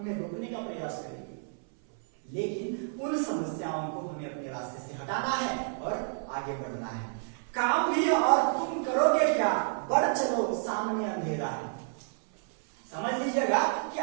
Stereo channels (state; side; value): silent; left; 58 dB below the other